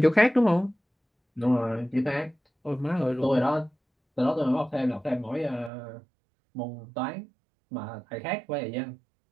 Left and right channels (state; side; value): drops out; left; at 5.7 s